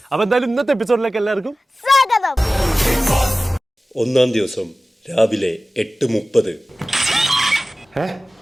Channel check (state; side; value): normal; both; correlation 0.96